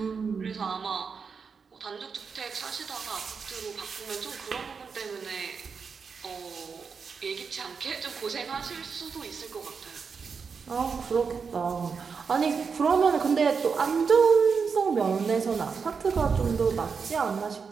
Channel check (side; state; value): left; quieter; 5.6 dB